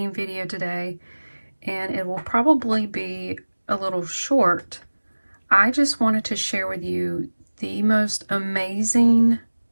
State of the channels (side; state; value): both; inverted; correlation -1.00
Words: video today and it will probably be a little short. I just wanted to share with you the most amazing